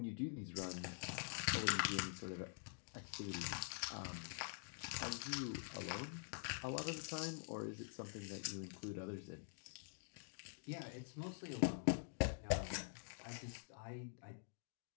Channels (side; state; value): right; silent; digital silence